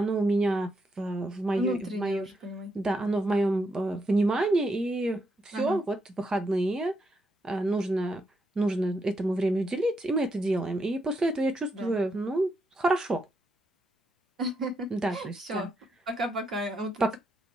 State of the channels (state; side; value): normal; both; correlation 0.80